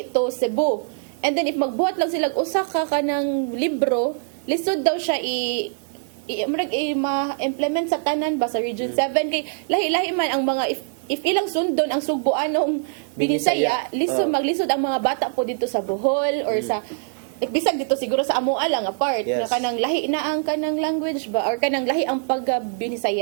to Cebu. And then if magbuhat lang sila usa ka kanang libro lisod daw siya ma-implement sa tanan ba sa Region 7 kay lahi-lahi man ang mga if ilang sundon ang Sugboanong Binisaya, lisod Oh. maglisod ang mga bata po dito sa Bohol or sa bisag dito siguro sa amo lang apart Yes. nga kanang lahi na ang kanang language ba or kanang lahi ang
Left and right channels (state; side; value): silent; left; digital silence